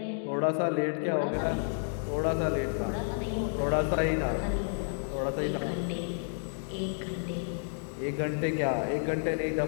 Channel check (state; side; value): silent; right; digital silence